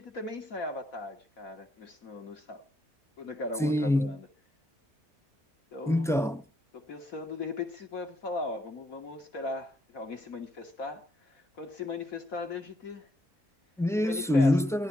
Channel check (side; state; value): both; normal; correlation 0.76